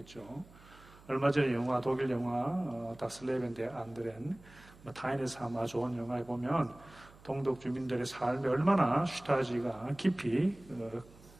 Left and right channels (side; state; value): right; noise; hum, 23 dB below the sound